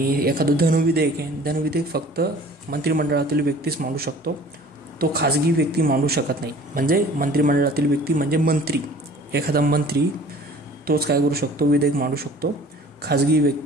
एखादं धनविधेयक आहे, धनविधेयक फक्त मंत्रिमंडळातील व्यक्तीच मांडू शकतो, तो खाजगी व्यक्ती मांडू शकत नाही. म्हणजे मंत्रिमंडळातील व्यक्ती म्हणजे मंत्री, एखादा मंत्री तोच काय करू शकतो, विधेयक मांडू शकतो, खाजगी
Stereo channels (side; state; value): both; normal; correlation 0.49